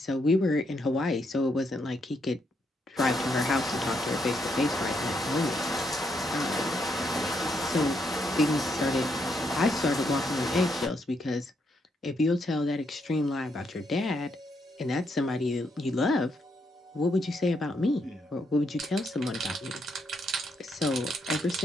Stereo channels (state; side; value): normal; both; correlation 0.77